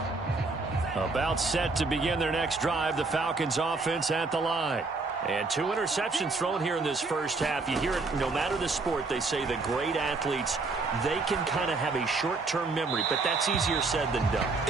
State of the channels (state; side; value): quieter; left; 3.8 dB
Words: About set to begin their next drive, the Falcons offense at the line. And 2 interceptions thrown here in this first half. You hear it no matter the sport. They say the great athletes, they can kind of have a short-term memory, but that's easier said than done.